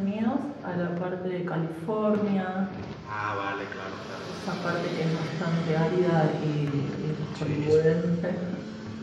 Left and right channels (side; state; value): both; identical; correlation 1.00